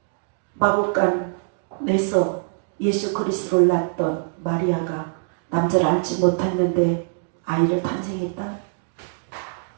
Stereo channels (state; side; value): silent; left; digital silence